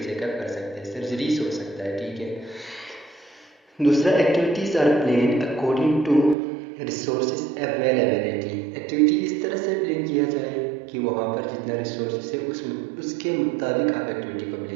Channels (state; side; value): drops out; left; at 6.4 s